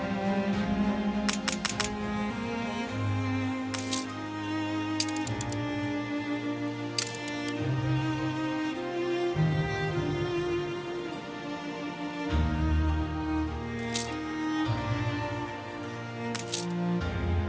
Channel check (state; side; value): identical; both; correlation 1.00